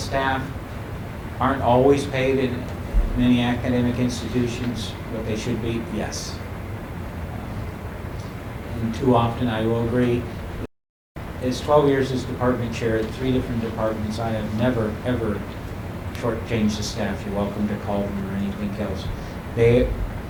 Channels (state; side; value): identical; both; correlation 1.00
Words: aren't always paid in many academic institutions what they should be? Yes. And too often I will agree. As 12 years as department chair at 3 different departments, I have never, ever shortchanged the staff. You're welcome to call them or anything else. They